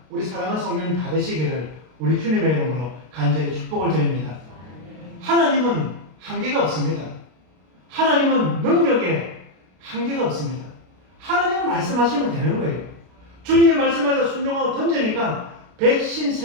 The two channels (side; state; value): left; late; 32 ms